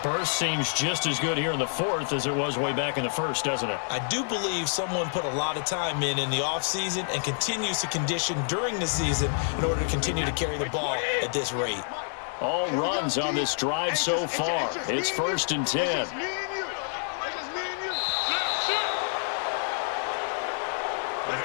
Burst seems just as good here in the 4th as it was way back in the 1st, doesn't it? I do believe someone put a lot of time in the offseason and continues to condition during the season in order to continue to carry the ball at this rate. All runs on this drive so far. It's 1st and 10.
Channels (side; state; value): right; silent; digital silence